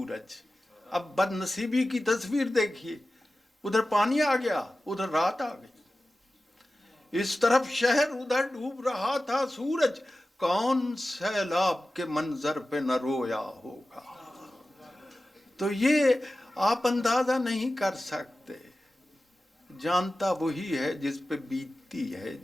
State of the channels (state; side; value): normal; both; correlation 0.95